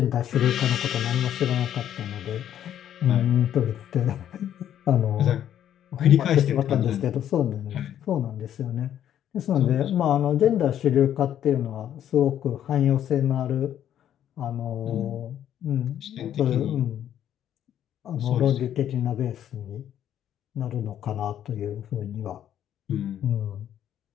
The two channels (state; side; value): quieter; right; 10.5 dB